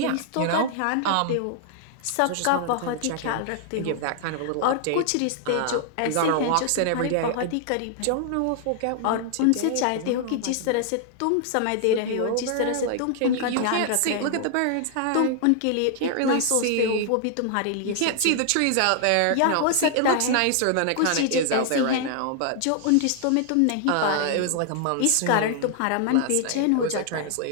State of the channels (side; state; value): both; different; correlation 0.00